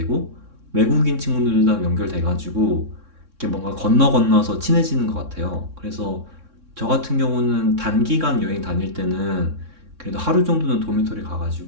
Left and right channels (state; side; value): late; left; 3.6 ms